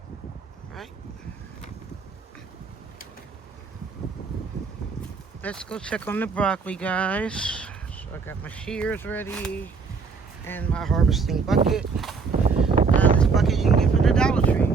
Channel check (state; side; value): quieter; left; 5.1 dB